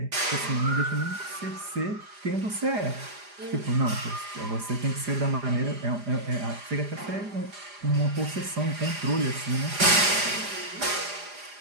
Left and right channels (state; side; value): late; left; 4.9 ms